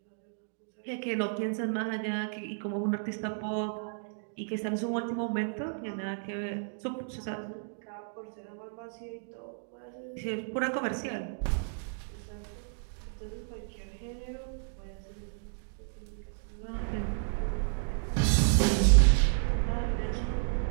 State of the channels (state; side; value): silent; left; digital silence